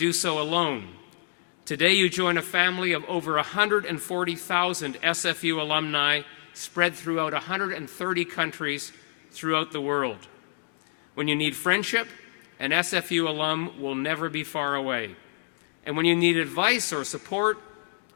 so alone. Today you join a family of over 140,000 SFU alumni spread throughout 130 countries throughout the world. When you need friendship, an SFU alum will never be far away. And when you need advice or support,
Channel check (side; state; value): right; silent; digital silence